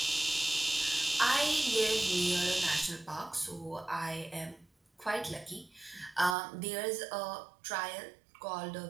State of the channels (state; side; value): drops out; left; at 6.4 s